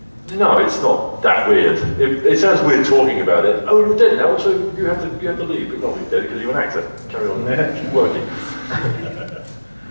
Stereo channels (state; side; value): inverted; both; correlation -1.00